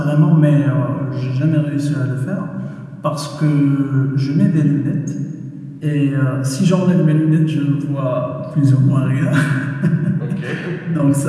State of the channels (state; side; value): identical; both; correlation 1.00